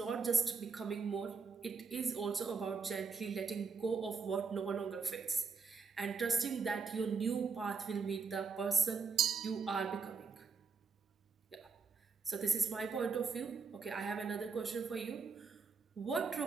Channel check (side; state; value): left; quieter; 5.2 dB